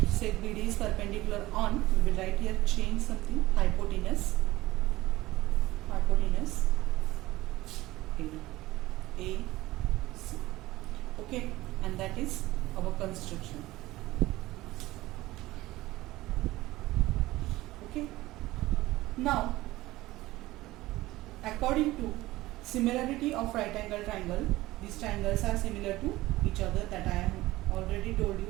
say BD is perpendicular on, we will write here, change something, hypotenuse AC. Okay, and that is our construction. Okay, now according to Similarity of right angle triangle. These triangles are similar to each other, that I have already told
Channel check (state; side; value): quieter; left; 17.9 dB